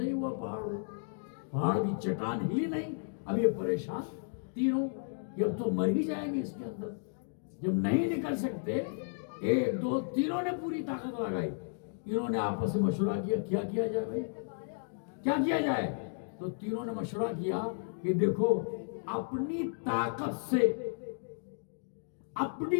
ہوا، پہاڑ کی چٹان ہلی نہیں۔ اب یہ پریشان تینوں کہ اب تو مر ہی جائیں گے اس کے اندر، جب نہیں نکل سکتے، 1 2 تینوں نے پوری طاقت لگائی۔ انہوں نے آپس میں مشورہ کیا کیا کیا جائے بھائی، کیا کیا جائے؟ تو تینوں نے مشورہ کیا کہ دیکھو، اپنی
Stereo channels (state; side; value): silent; right; digital silence